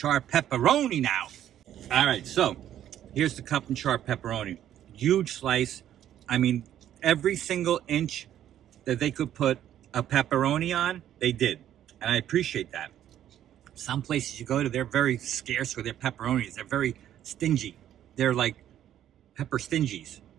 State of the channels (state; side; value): quieter; left; 11.2 dB